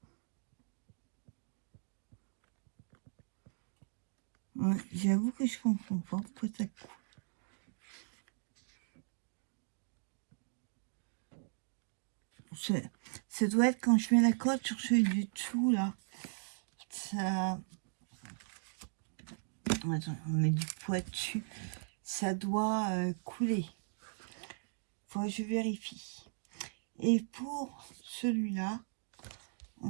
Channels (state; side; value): silent; left; digital silence